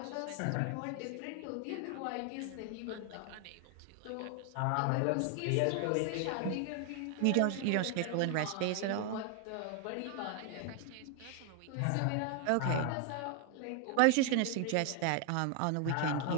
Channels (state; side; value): different; both; correlation 0.00